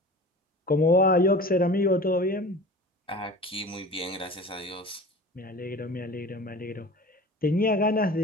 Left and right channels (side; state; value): both; normal; correlation 0.38